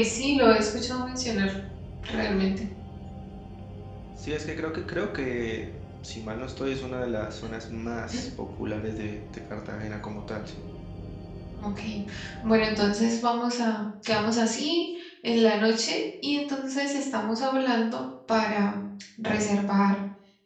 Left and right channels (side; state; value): both; identical; correlation 1.00